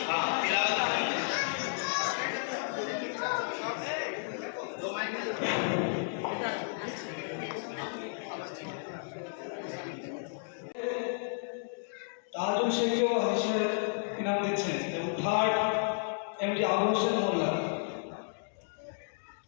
हाँ तिलावत তাজুল শেখও হাদিসের ইনাম দিচ্ছেন এবং থার্ড এমডি আবু হোসেন মোল্লা।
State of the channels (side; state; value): right; silent; digital silence